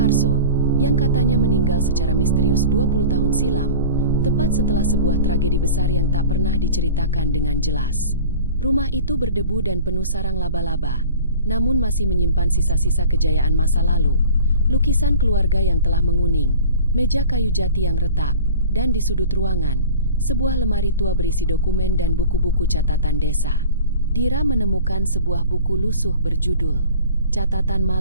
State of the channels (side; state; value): both; inverted; correlation -0.41